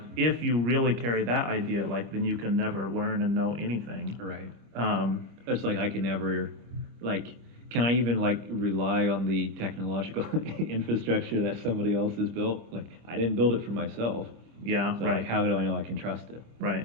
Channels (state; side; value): late; left; 26 ms